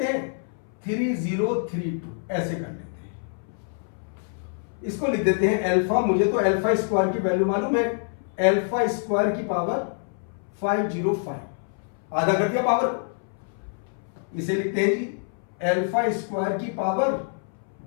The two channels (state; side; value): silent; right; 59 dB below the other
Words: हैं, 3032 ऐसे कर लेते हैं। इसको लिख देते हैं अल्फा, मुझे तो अल्फा स्क्वायर की वैल्यू मालूम है, अल्फा स्क्वायर की पावर 505, आधा कर दिया पावर को। इसे लिखते हैं जी अल्फा स्क्वायर की पावर